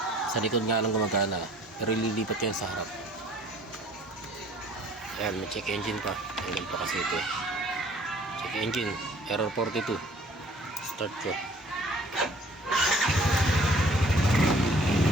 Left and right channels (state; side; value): normal; both; correlation 0.55